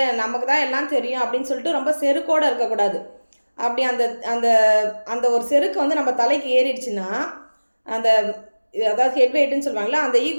நமக்கு தான் எல்லாம் தெரியும் அப்படின்னு சொல்லிட்டு ரொம்ப செருக்கோடு இருக்கக்கூடாது. அப்படி அந்த அந்த அந்த ஒரு செருக்கு நம்ம தலைக்கு ஏறிடுச்சுன்னா, அதாவது ஹெட் வெயிட்டுன்னு சொல்லுவாங்களா, அந்த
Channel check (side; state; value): both; inverted; correlation -1.00